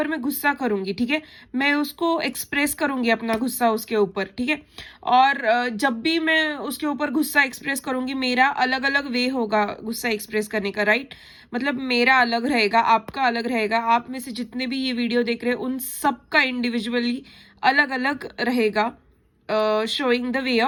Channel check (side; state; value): both; identical; correlation 1.00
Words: मैं गुस्सा करूंगी. ठीक है, मैं उसको एक्सप्रेस करूंगी अपना गुस्सा उसके ऊपर. ठीक है, और जब भी मैं उसके ऊपर गुस्सा एक्सप्रेस करूंगी, मेरा अलग अलग वे होगा गुस्सा एक्सप्रेस करने का. राइट, मतलब मेरा अलग रहेगा, आपका अलग रहेगा, आप में से जितने भी ये वीडियो देख रहे हैं उन सबका इंडिविजुअली अलग अलग रहेगा showing the way